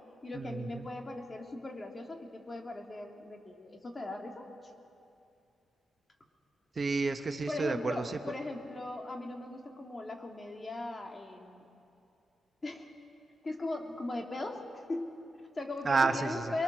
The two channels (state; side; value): normal; both; correlation 0.89